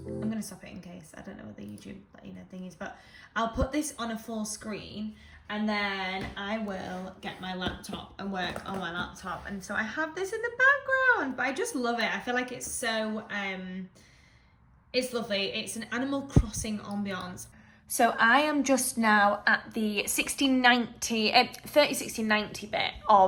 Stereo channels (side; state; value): both; identical; correlation 1.00